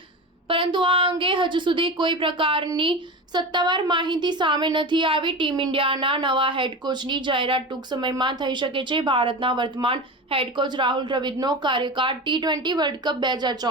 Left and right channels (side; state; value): both; normal; correlation 0.27